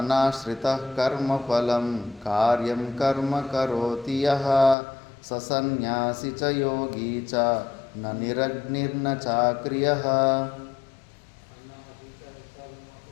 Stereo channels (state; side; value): drops out; right; at 4.8 s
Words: కర్మఫలం కార్యం కర్మ కరోతి యః ససన్యాసి చ యోగీ చ న నిరగ్నిర్న చాక్రియః.